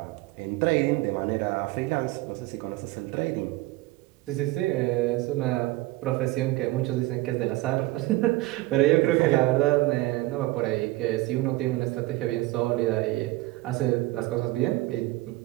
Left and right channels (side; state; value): left; quieter; 19.0 dB